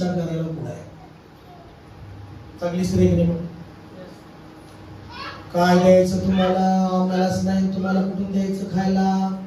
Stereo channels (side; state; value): both; identical; correlation 1.00